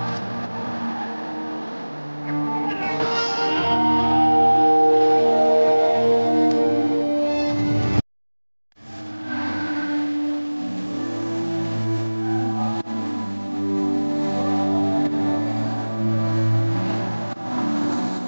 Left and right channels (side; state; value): both; inverted; correlation -1.00